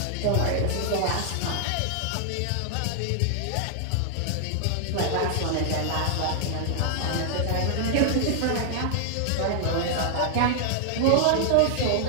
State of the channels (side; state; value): both; different; correlation -0.01